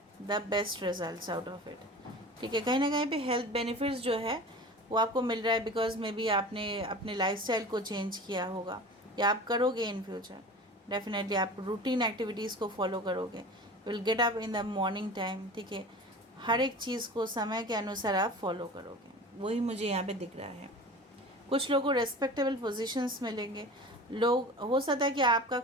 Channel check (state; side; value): normal; both; correlation 0.37